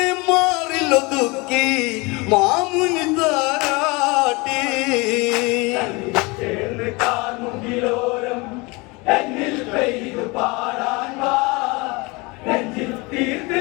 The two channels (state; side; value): quieter; right; 26.0 dB